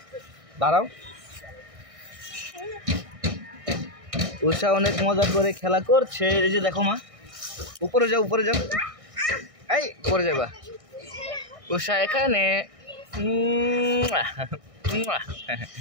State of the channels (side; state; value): left; late; 1.6 ms